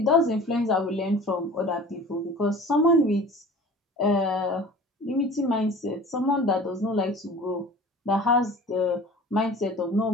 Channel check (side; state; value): both; normal; correlation 0.42